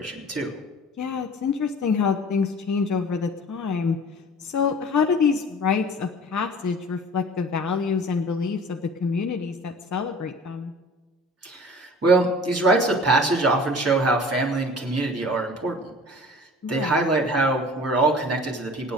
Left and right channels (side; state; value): both; normal; correlation 0.44